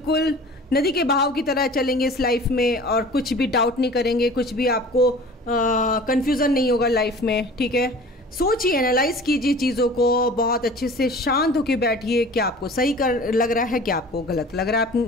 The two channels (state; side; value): normal; both; correlation 0.43